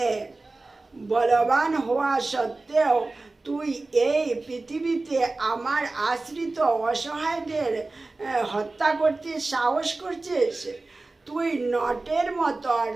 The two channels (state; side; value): quieter; left; 3.3 dB